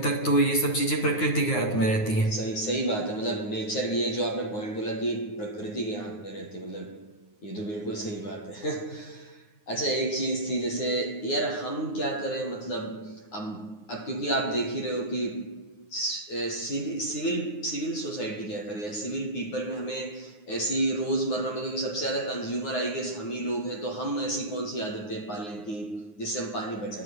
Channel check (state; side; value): late; right; 9.5 ms